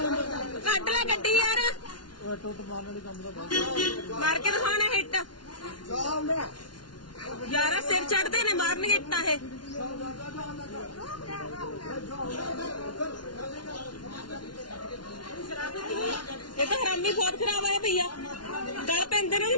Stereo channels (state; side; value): late; right; 0.70 ms